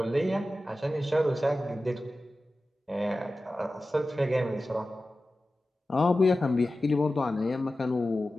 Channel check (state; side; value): normal; both; correlation 0.94